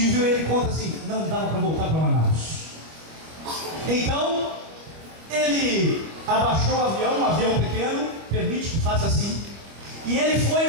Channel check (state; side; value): late; left; 25 ms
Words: e ele conta assim, não dava para voltar para Manaus. Então, ele abaixou o avião, um avião pequeno, permite que faça assim, e ele foi